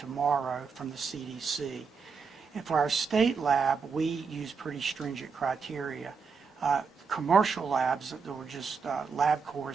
from the CDC. And for our state lab, we use pretty stringent criteria. Commercial labs, there were just LabCorp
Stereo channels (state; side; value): quieter; left; 5.5 dB